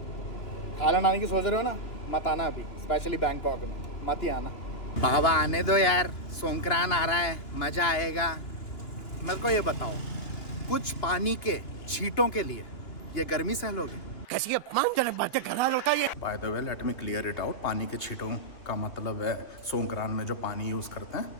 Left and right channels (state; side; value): late; right; 2.9 ms